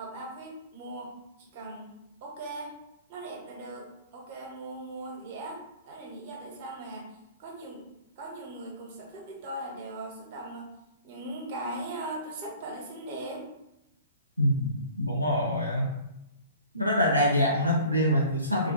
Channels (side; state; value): both; inverted; correlation -0.47